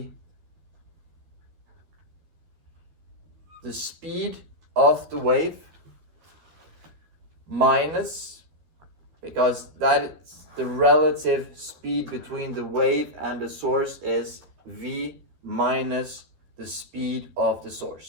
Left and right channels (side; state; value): left; late; 12 ms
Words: the speed of the wave minus, because that is the relative speed between the wave and the source is v minus the speed of the